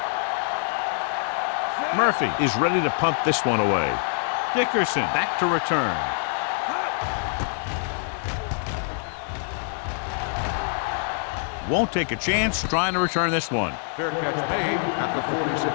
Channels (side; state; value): right; silent; digital silence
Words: Murphy is ready to punt this one away. Dickerson back to return. Won't take a chance trying to return this one. Fair catch made at the